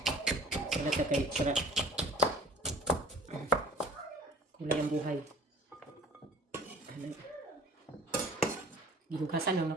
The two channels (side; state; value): both; normal; correlation 0.49